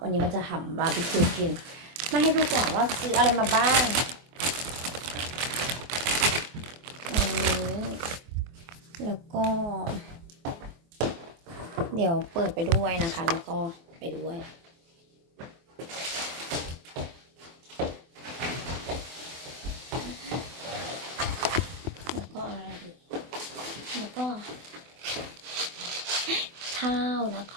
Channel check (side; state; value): left; late; 24 ms